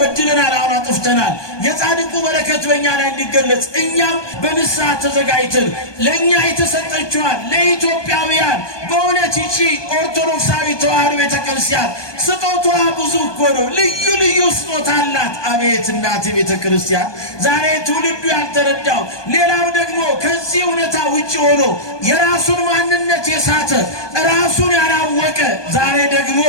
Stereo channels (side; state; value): right; late; 1.2 ms